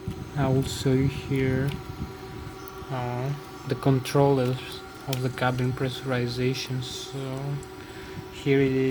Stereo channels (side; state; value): both; identical; correlation 1.00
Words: I will show you here the controllers of the cabin pressurization. So here it